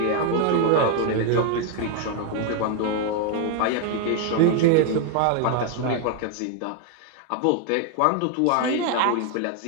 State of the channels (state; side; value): different; both; correlation 0.01